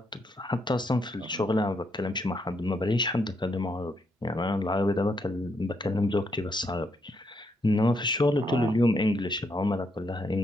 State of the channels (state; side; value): normal; both; correlation 0.77